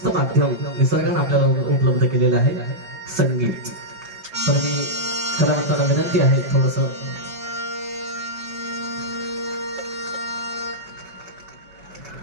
माध्यम निसर्गाने आपल्याला उपलब्ध केलेलं आहे, संगीत. तर मी कलावंतांना विनंती आहे थोडस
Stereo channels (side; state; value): left; late; 4.8 ms